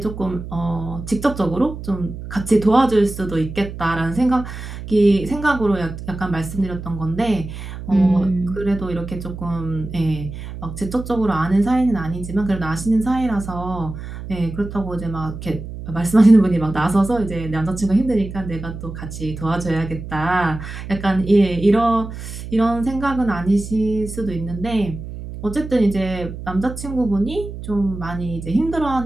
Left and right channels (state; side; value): noise; right; hum, 10 dB below the sound